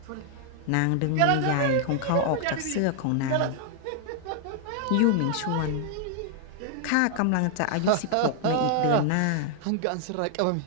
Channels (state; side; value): different; both; correlation 0.00